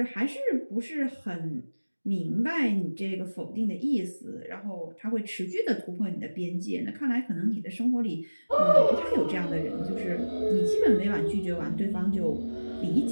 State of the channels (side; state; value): both; inverted; correlation -1.00